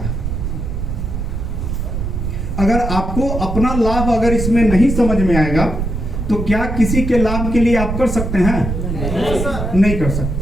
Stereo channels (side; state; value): right; noise; rumble, 3 dB below the sound